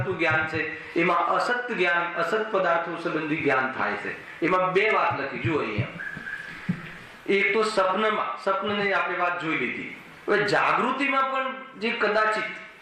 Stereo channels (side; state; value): both; identical; correlation 1.00